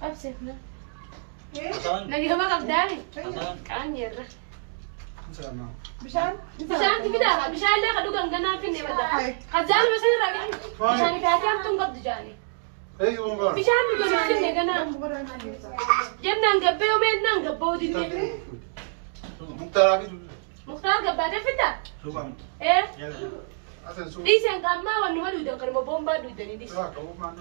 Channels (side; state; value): left; silent; digital silence